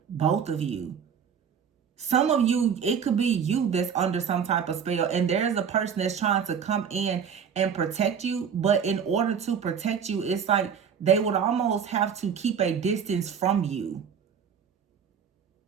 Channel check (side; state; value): left; quieter; 7.3 dB